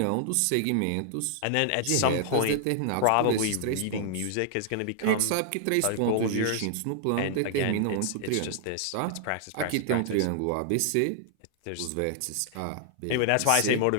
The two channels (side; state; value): both; different; correlation -0.01